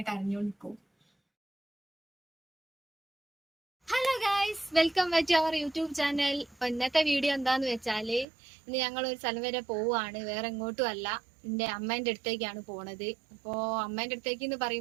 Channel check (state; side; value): drops out; left; at 8.2 s